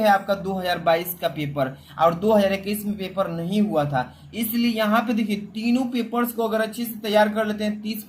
आपका 2022 का पेपर, और 2021 में पेपर नहीं हुआ था। इसलिए यहाँ पे देखिए, तीनों पेपर्स को अगर अच्छे से तैयार कर लेते हैं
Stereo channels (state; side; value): identical; both; correlation 1.00